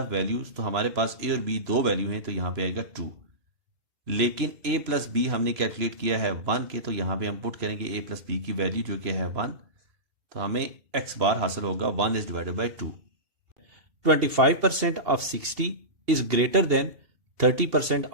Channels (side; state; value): left; late; 2.8 ms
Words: वैल्यूज, तो हमारे पास ए और बी दो वैल्यू हैं तो यहां पे आएगा 2। लेकिन ए प्लस बी हमने कैलकुलेट किया है 1 के, तो यहां पे हम पुट करेंगे ए प्लस बी की वैल्यू जो कि है 1, तो हमें एक्स बार हासिल होगा 1 is divided bye 2। 25% of 60 is greater than 30%